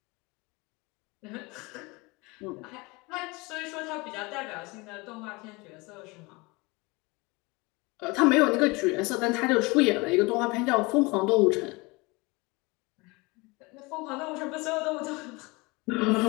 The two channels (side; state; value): right; quieter; 25.3 dB